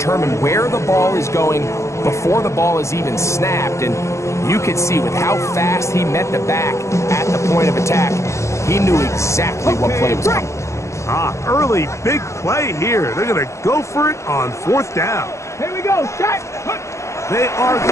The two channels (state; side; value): late; right; 0.14 ms